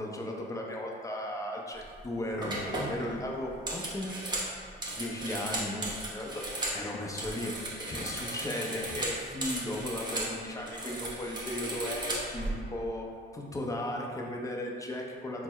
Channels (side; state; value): both; normal; correlation 0.40